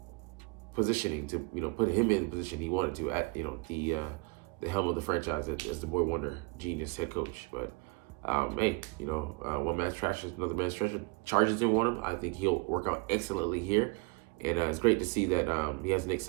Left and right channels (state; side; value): quieter; left; 29.0 dB